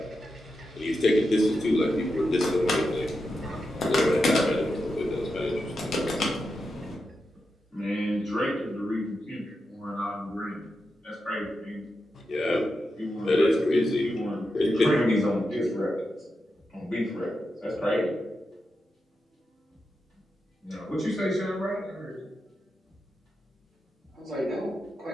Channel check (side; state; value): both; normal; correlation 0.88